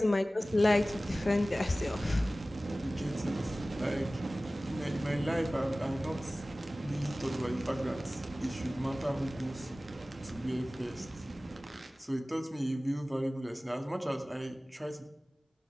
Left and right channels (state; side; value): normal; both; correlation 0.97